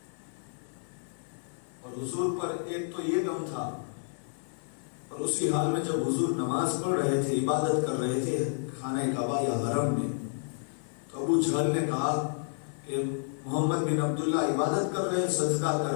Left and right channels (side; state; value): right; silent; 58 dB below the other